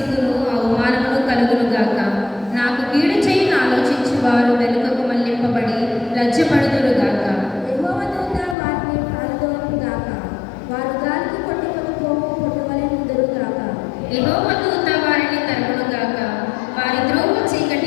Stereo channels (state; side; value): drops out; right; at 8.6 s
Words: అవమానమును కలుగునుగాక. నాకు కీడు చేయని ఆలోచించి వారు వెనుకకు మళ్లింపబడి లజ్జపడుదురుగాక. యెహోవా దూత వారిని పారదోలుగాక. వారు గాలికి కొట్టుకొని పోవు పొట్టువలె నుందురుగాక. యెహోవా దూత వారిని తరుమునుగాక. వారి త్రోవ